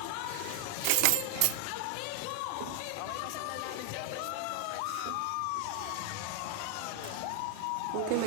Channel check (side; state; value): both; different; correlation 0.00